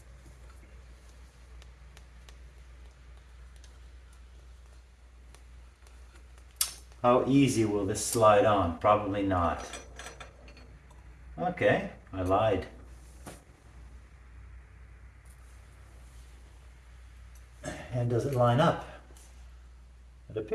How easy will this slide on? Probably not. Okay, I lied. And does it line up? It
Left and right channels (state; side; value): identical; both; correlation 1.00